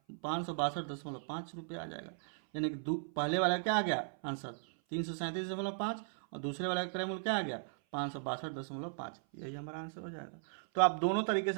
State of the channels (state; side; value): silent; left; 53 dB below the other